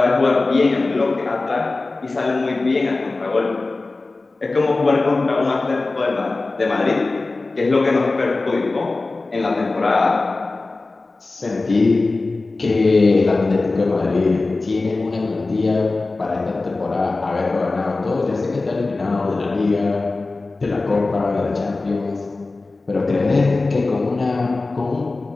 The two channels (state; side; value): quieter; right; 3.4 dB